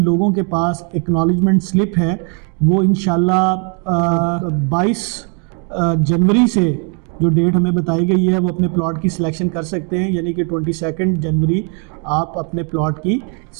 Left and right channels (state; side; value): quieter; left; 37.3 dB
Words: لوگوں کے پاس ایکنالجمنٹ سلپ ہے وہ انشاءاللہ 22 جنوری سے جو ڈیٹ ہمیں بتائی گئی ہے وہ اپنے پلاٹ کی سلیکشن کر سکتے ہیں. یعنی کہ 22 جنوری آپ اپنے پلاٹ کی